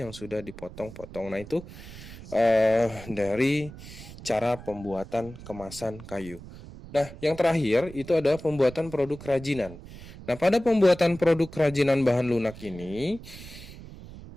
yang sudah dipotong-potong. Nah, itu dari cara pembuatan kemasan kayu. Nah, yang terakhir itu adalah pembuatan produk kerajinan. Nah, pada pembuatan produk kerajinan bahan lunak ini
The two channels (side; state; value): right; noise; rumble, 15 dB below the sound